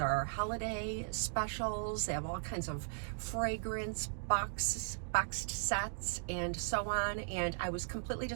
holiday specials. They have all kinds of fragrance boxed sets and so on, and I was completely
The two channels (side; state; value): left; silent; digital silence